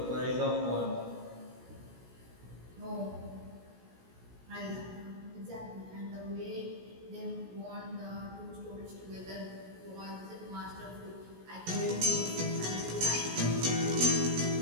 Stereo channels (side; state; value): left; late; 16 ms